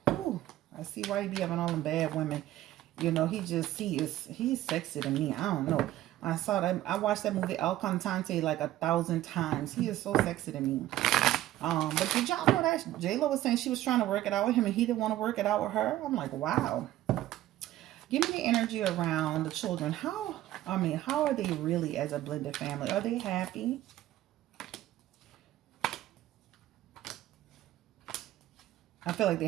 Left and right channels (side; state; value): left; quieter; 14.3 dB